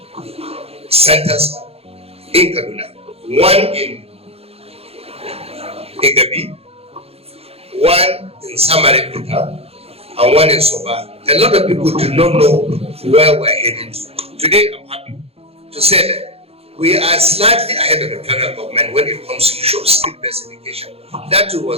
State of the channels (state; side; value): late; left; 0.29 ms